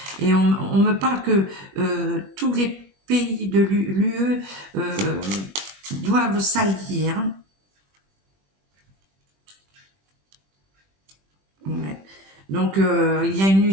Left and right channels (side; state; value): left; late; 21 ms